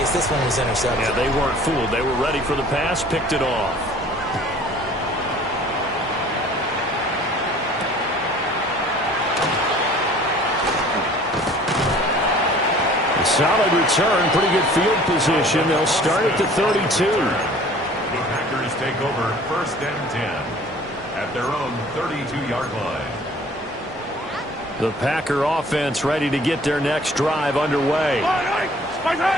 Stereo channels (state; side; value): normal; both; correlation 0.50